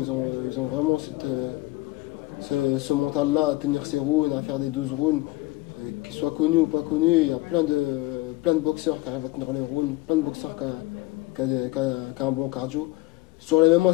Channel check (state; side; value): quieter; right; 19.3 dB